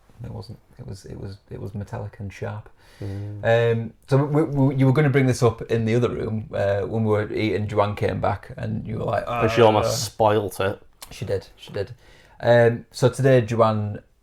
It wasn't. It was metallic and sharp. So you were going to bring this up in the other room when we were eating. Joanne came back and you were like, but she almost spoilt it. She did. So today Joanne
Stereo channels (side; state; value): both; identical; correlation 1.00